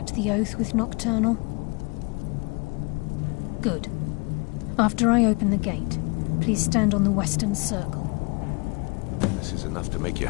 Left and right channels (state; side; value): quieter; right; 29.7 dB